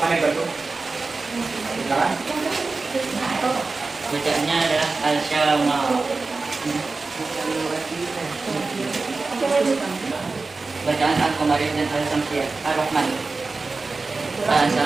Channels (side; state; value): left; quieter; 3.9 dB